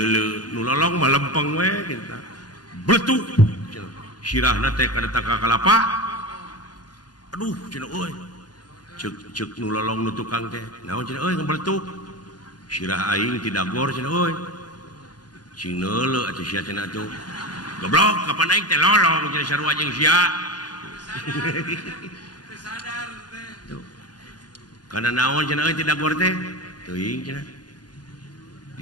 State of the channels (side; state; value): right; late; 0.69 ms